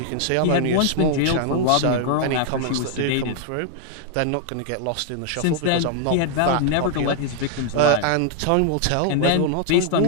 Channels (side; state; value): both; different; correlation 0.00